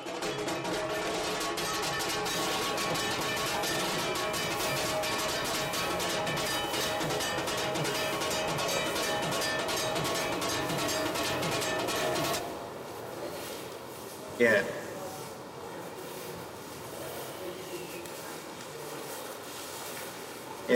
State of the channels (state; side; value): identical; both; correlation 1.00